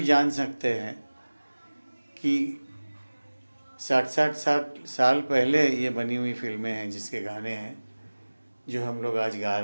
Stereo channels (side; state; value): both; inverted; correlation -1.00